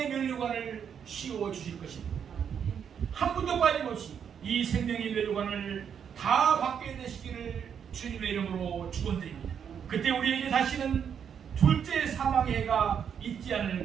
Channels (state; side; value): quieter; left; 7.8 dB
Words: 멸류관을 씌워 주실 것입니다. 한 분도 빠짐없이 이 생명의 멸류관을 다 받게 되시기를 주님의 이름으로 축원드립니다. 그때 우리에게 다시는 둘째 사망의 해가 있지 않을